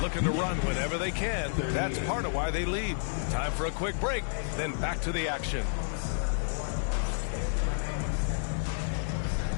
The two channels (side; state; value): right; silent; digital silence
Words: Looking to run whenever they can. That's part of why they lead. Time for a quick break, then back to the action.